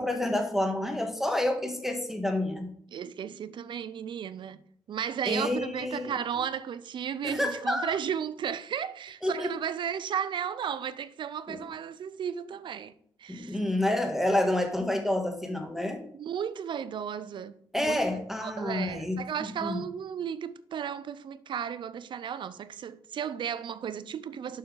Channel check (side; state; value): both; normal; correlation 0.65